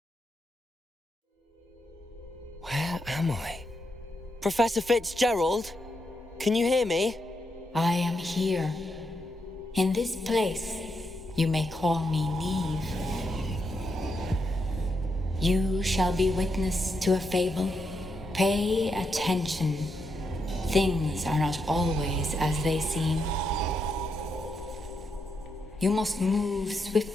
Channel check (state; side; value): normal; both; correlation 0.82